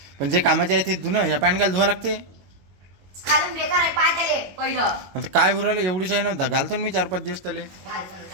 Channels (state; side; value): late; left; 22 ms